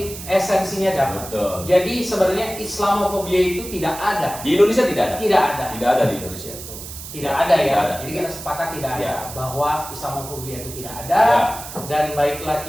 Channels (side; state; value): right; noise; hiss, 12 dB below the sound